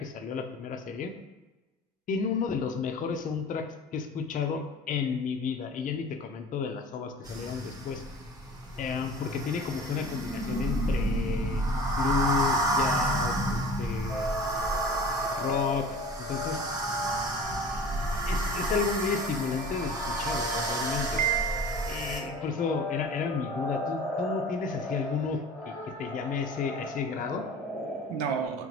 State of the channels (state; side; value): normal; both; correlation 0.40